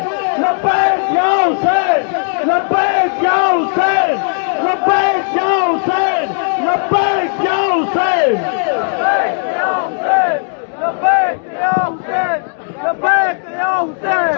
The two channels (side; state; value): right; silent; 61 dB below the other